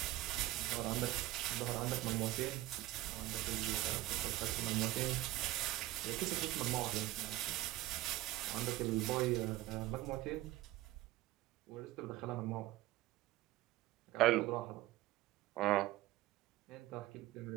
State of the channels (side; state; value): left; quieter; 16.7 dB